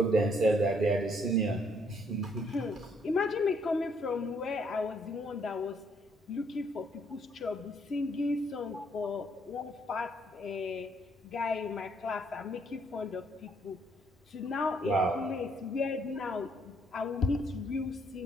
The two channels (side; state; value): both; normal; correlation 0.69